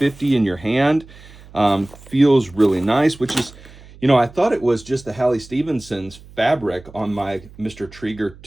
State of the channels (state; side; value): noise; right; hum, 21 dB below the sound